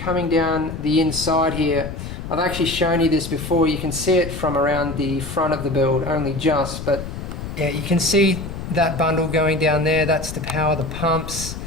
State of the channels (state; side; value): noise; left; rumble, 8 dB below the sound